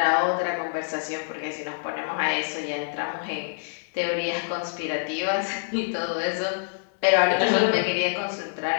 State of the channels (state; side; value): silent; right; digital silence